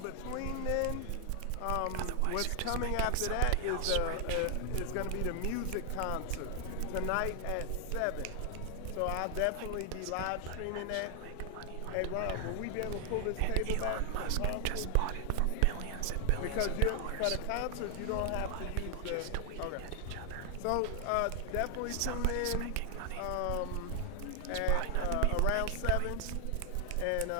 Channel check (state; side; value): different; both; correlation 0.00